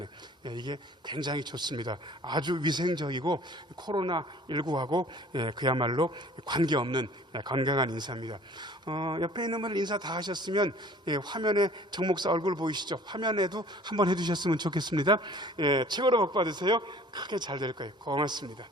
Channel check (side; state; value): both; normal; correlation 0.50